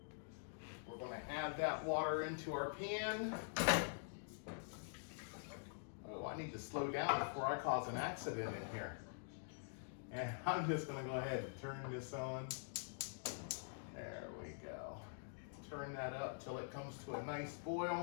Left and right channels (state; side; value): silent; right; digital silence